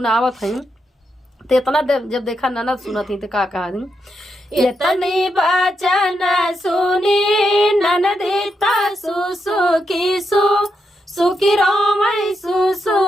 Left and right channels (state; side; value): normal; both; correlation 0.83